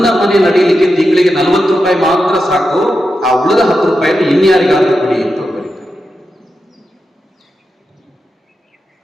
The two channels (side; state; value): both; normal; correlation 0.89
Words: ಮನೆ ನಡೀಲಿಕ್ಕೆ ತಿಂಗಳಿಗೆ 40 ರೂಪಾಯಿ ಮಾತ್ರ ಸಾಕು, ಆ ಉಳಿದ 10 ರೂಪಾಯಿಯನ್ನು ಇನ್ಯಾರಿಗಾದ್ರೂ ಕೊಡಿ ಅಂತ ಬರೀತಾರೆ.